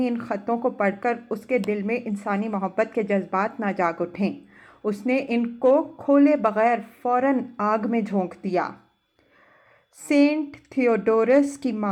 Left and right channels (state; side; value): identical; both; correlation 1.00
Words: ان خطوں کو پڑھ کر اس کے دل میں انسانی محبت کے جذبات نہ جاگ اٹھیں۔ اس نے ان کو کھولے بغیر فوراً آگ میں جھونک دیا۔ سینٹ تھیوڈورس کی